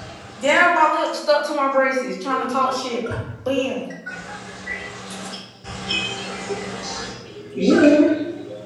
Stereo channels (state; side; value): identical; both; correlation 1.00